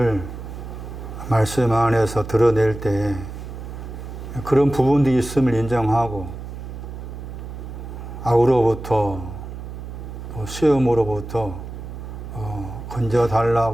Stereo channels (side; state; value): right; noise; hum, 10 dB below the sound